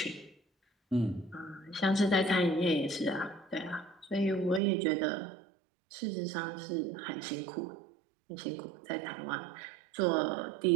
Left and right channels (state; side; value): drops out; left; at 4.6 s